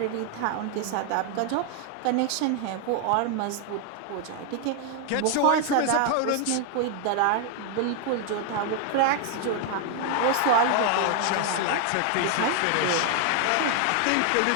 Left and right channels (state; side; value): different; both; correlation 0.00